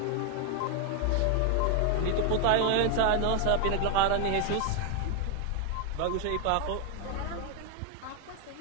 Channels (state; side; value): different; both; correlation 0.01